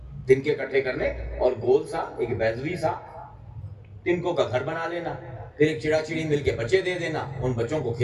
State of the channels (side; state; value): both; identical; correlation 1.00